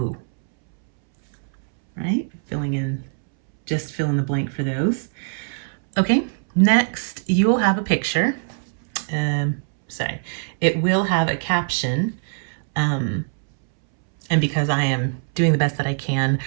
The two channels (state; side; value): silent; left; 64 dB below the other